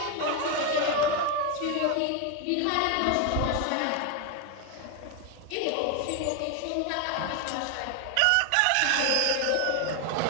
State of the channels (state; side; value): different; both; correlation 0.01